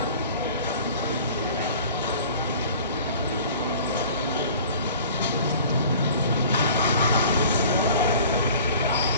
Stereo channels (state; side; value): inverted; both; correlation -0.46